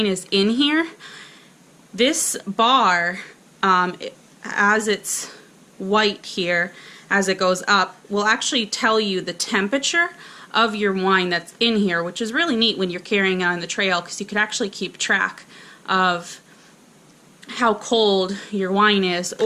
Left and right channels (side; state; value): both; identical; correlation 1.00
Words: is in here, this bar, as it's white here, as it goes up, will actually tell you the temperature of your wine that's in here, which is really neat when you're carrying it on the trail, because you can actually keep track of how cold your wine is,